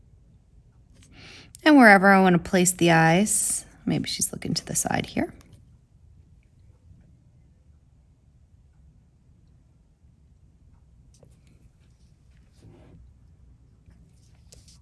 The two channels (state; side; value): identical; both; correlation 1.00